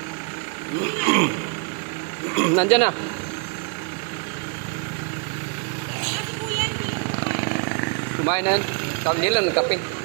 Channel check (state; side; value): quieter; left; 36.9 dB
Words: Nandyan na. Kumain na yan. Tawag nila, nagkape.